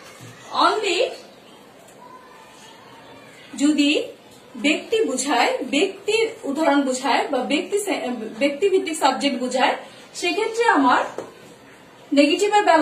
অনলি যদি ব্যক্তি বুঝায়, ব্যক্তির উদাহরণ বুঝায় বা ব্যক্তি ভিত্তিক সাবজেক্ট বুঝায়, সেক্ষেত্রে আমার নেগেটিভের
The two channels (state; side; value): identical; both; correlation 1.00